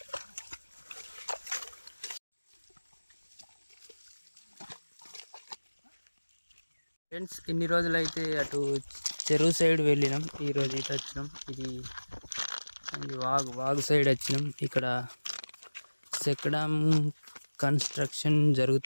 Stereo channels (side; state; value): both; inverted; correlation -1.00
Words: ఫ్రెండ్స్, ఇన్ని రోజులైతే అటు చెరువు సైడ్ వెళ్ళినాం. ఈరోజు ఇటు వచ్చినాం. ఇది వాగు సైడ్ వచ్చినాం. ఇక్కడ చెక్కడం కన్స్ట్రక్షన్